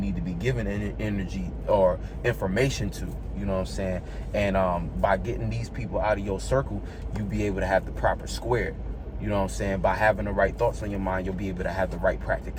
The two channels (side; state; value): both; identical; correlation 1.00